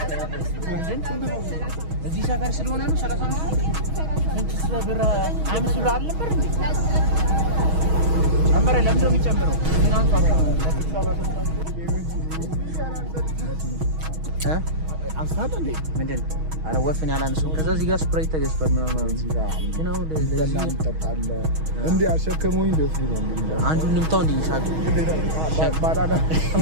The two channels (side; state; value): left; late; 6.3 ms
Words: እዚህ ሰፈር ስለሆነ ነው 35 ስንት ብር 5 ብር አልነበር እንዴ? ጨመረ። ለምንድን ነው የሚጨምረው? ምን አንሷል? አንሳት እንዴ ምንድን አረ ወፍን ያላነሰው ከዛ እዚህ ጋር ስፕራይት ተገዝቷል ምናምን ግን አሁን ለዚህ ተጣጣለ እንዴ አሸከመውኝ ደስ ነው የሚለው አንዱን ንምታው እንዴ ሻቅ ባላላ